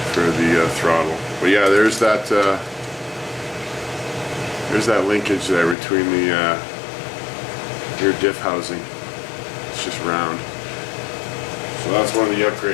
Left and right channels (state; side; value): drops out; right; at 5.8 s